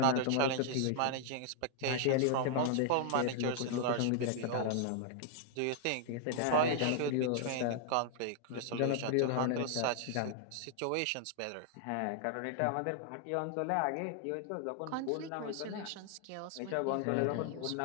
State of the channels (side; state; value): both; different; correlation 0.00